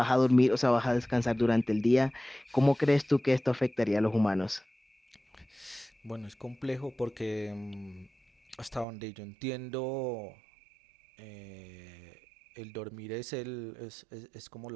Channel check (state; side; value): drops out; left; at 8.8 s